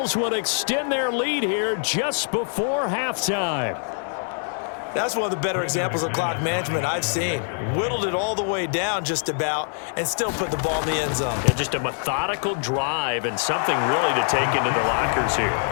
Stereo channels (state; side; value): silent; right; digital silence